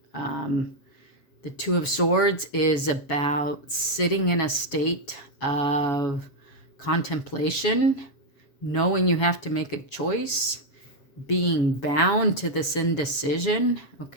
The Two of Swords is about sitting in a state of contemplation, knowing you have to make a choice, being bound to this indecision,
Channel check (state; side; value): late; right; 7.2 ms